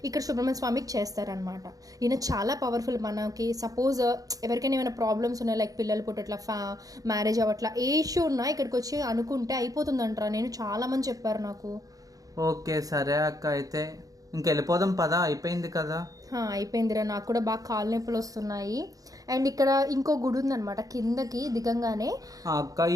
ఇక్కడ సుబ్రహ్మణ్య స్వామికి చేస్తారనమాట. ఈయన చాలా పవర్ఫుల్. మనకి సపోజ్ ఎవరికైనా ఏమైనా ప్రాబ్లమ్స్ ఉన్నాయి, లైక్ పిల్లలు పుట్టట్లా, మ్యారేజ్ అవ్వట్లా, ఏ ఇష్యూ ఉన్నా ఇక్కడికి వచ్చి అనుకుంటే అయిపోతుందంటారా. నేను చాలా మంది చెప్పారు నాకు. ఓకే, సరే అక్క, అయితే ఇంకెళ్ళిపోదాం పదా, అయిపోయింది కదా? అయిపోయిందిరా, నాకు కూడా బాగా కాలు నొప్పులు వస్తున్నాయి. అండ్ ఇక్కడ ఇంకో గుడి ఉందన్నమాట కిందకి దిగంగానే. అక్క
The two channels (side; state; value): left; late; 0.17 ms